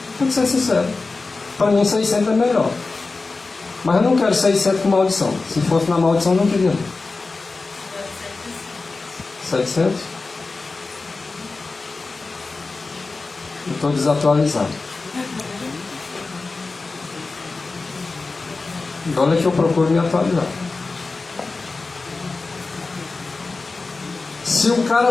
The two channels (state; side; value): quieter; right; 3.8 dB